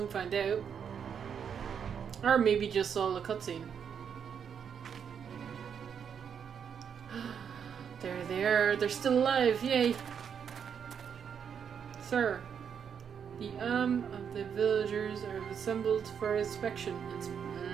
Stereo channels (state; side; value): quieter; left; 7.5 dB